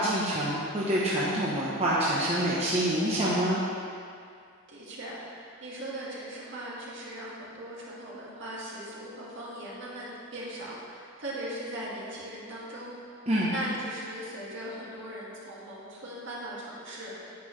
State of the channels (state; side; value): normal; both; correlation 0.33